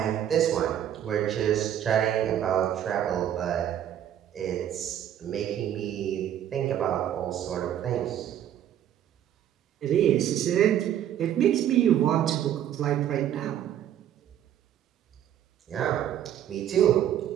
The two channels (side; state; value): left; quieter; 10.6 dB